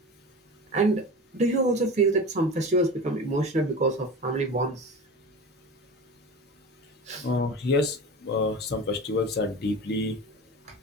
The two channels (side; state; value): both; normal; correlation 0.31